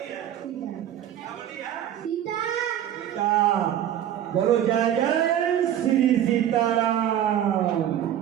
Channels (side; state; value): left; quieter; 10.9 dB